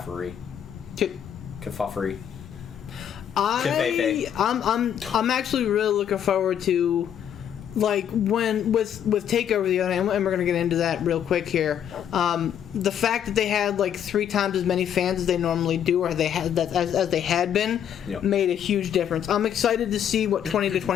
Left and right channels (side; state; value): right; quieter; 9.3 dB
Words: I'm actually really looking forward to, like, when with Takeover the other, and we're gonna get into that real quick here. The fact that they had like 3 times as many fans as they normally do, or they had that as they had been, Yep. made a huge difference. I'm excited to see what 20 to